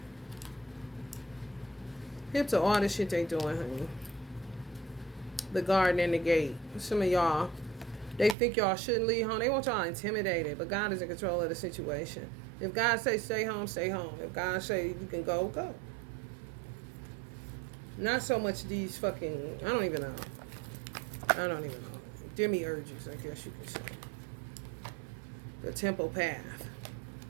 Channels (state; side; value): drops out; left; at 8.3 s